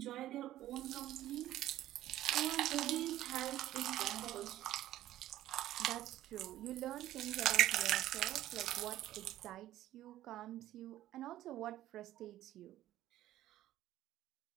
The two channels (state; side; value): quieter; left; 13.9 dB